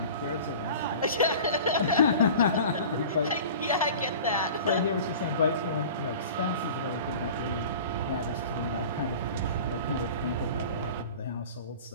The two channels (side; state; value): both; inverted; correlation -0.40